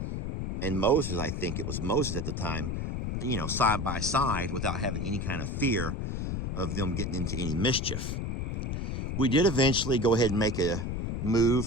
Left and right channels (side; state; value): left; noise; rumble, 2 dB below the sound